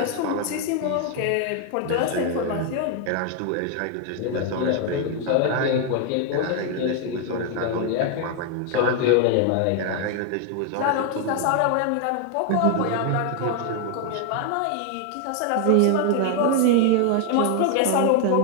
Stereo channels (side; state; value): both; different; correlation 0.00